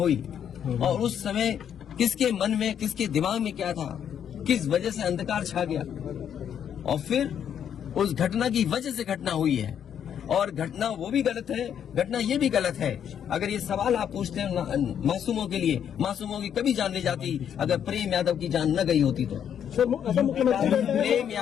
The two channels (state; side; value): quieter; right; 8.9 dB